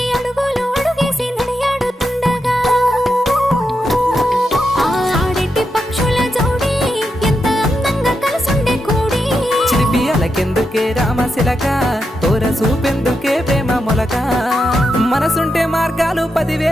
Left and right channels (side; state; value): both; normal; correlation 0.86